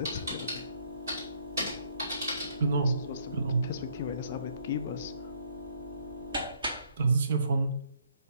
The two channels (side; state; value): both; inverted; correlation -0.67